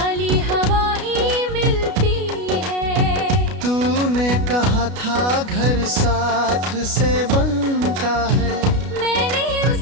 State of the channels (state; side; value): late; left; 33 ms